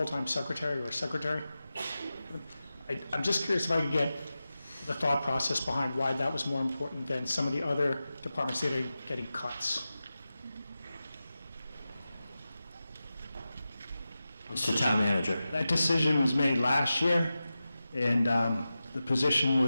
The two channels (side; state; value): both; inverted; correlation -0.93